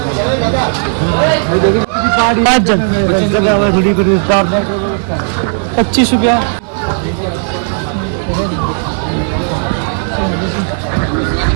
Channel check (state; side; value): silent; left; digital silence